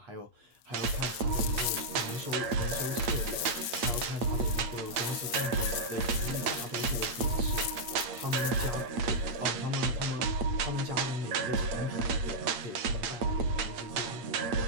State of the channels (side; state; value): left; late; 8.6 ms